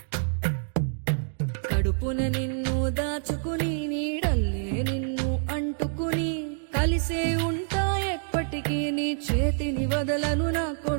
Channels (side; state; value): left; silent; digital silence